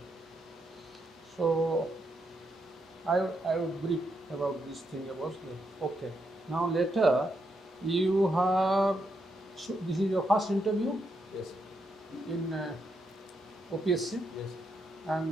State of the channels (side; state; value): both; normal; correlation 0.80